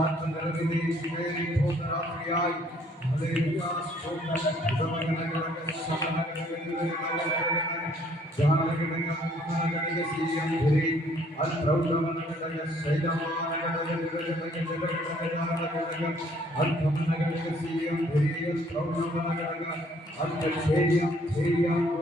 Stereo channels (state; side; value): normal; both; correlation 0.62